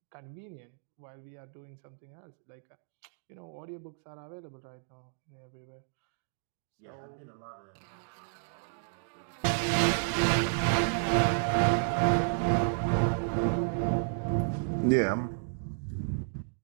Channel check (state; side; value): silent; left; digital silence